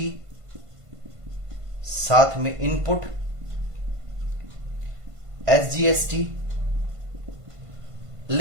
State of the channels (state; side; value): late; left; 1.5 ms